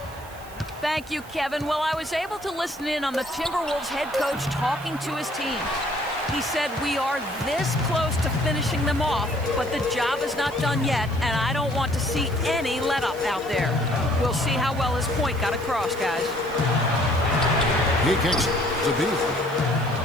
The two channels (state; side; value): noise; right; hiss, 21 dB below the sound